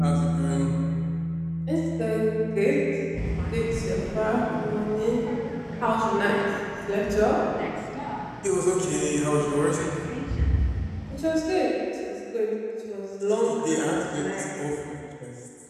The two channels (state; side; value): identical; both; correlation 1.00